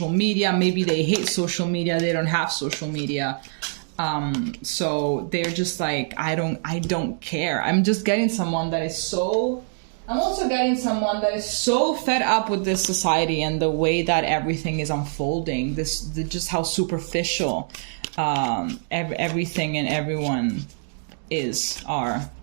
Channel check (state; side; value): silent; left; digital silence